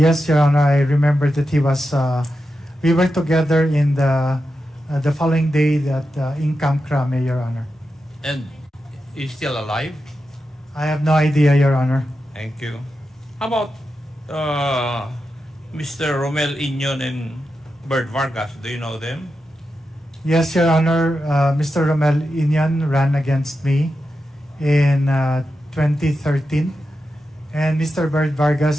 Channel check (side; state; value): both; normal; correlation 0.89